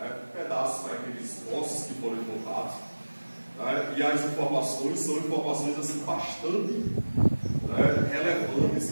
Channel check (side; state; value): both; inverted; correlation -1.00